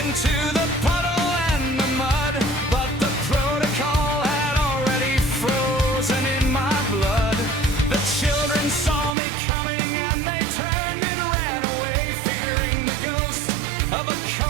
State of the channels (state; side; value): drops out; left; at 9.2 s